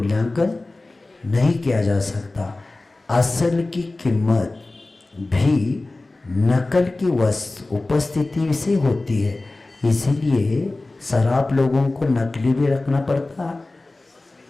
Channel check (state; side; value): quieter; right; 3.0 dB